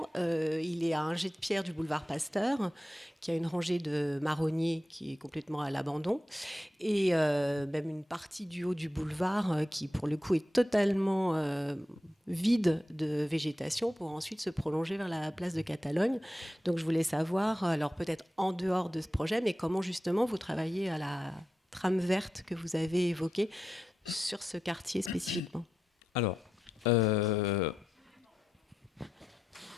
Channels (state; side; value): normal; both; correlation 0.89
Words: Il est à un jet de pierre du boulevard Pasteur, qui a une rangée de marronniers qui est complètement à l'abandon, et même une partie du haut du boulevard qui, pour le coup, est totalement vide de végétation pour ensuite se prolonger vers la place de Catalogne. Donc je voulais savoir, alors peut-être en dehors de ce projet, mais comment justement vous travaillez à la trame verte que vous avez évoquée sur ce quartier spécifiquement. Alors,